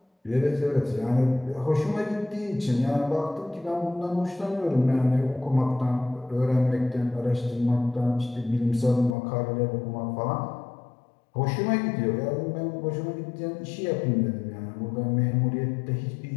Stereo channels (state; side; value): drops out; right; at 9.2 s